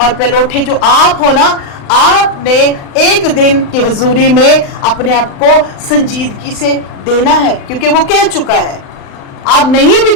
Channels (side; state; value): right; late; 36 ms